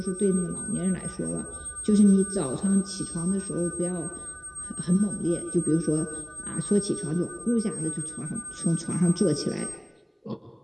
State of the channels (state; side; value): identical; both; correlation 1.00